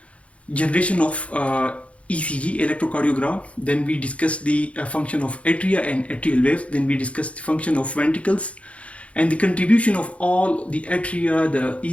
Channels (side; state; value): right; late; 0.063 ms